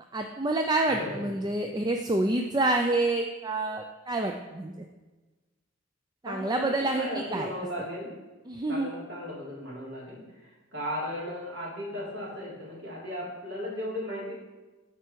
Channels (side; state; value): both; normal; correlation 0.36